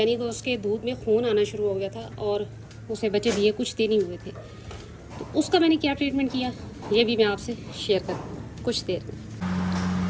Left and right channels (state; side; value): identical; both; correlation 1.00